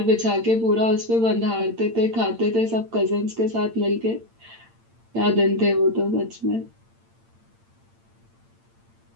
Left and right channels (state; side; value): late; left; 8.8 ms